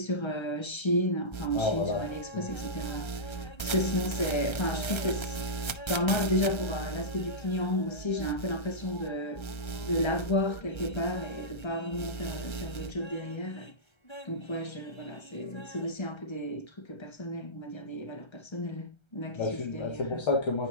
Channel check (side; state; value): right; late; 1.3 ms